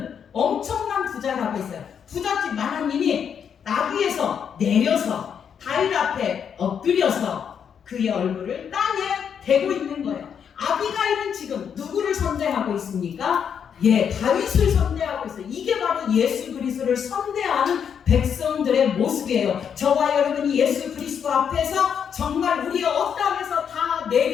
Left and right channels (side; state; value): right; quieter; 7.7 dB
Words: 엄청난 부자라고 했어요. 부잣집 마나님이 나귀에서 내려서 다윗 앞에 엎드려서 그의 얼굴을 땅에 대고 있는 거예요. 아비가일은 지금 누구를 선대하고 있습니까? 다윗을 선대하고 있어요. 이게 바로 예수 그리스도를 선대하는 백성들의 모습이에요. 저와 여러분이 예수 그리스도 앞에서 정말 우리의 어떠함에서 다